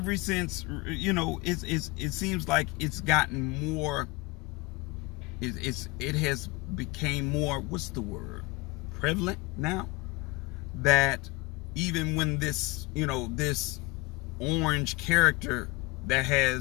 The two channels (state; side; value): quieter; right; 23.5 dB